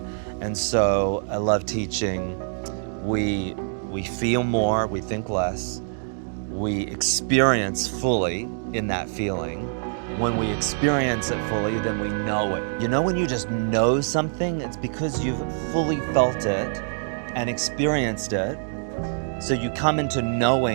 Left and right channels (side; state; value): left; silent; digital silence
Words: And so I love teaching. We feel more, we think less. We experience fully in that feeling. When we experience it fully, then we know it. You know, when you just know something, it's because you've fully felt it and experienced it. So you come into